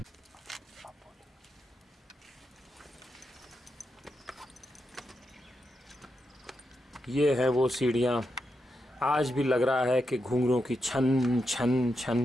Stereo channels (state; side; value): normal; both; correlation 0.85